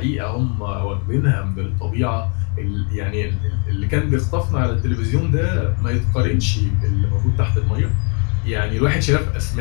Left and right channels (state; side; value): quieter; right; 37.1 dB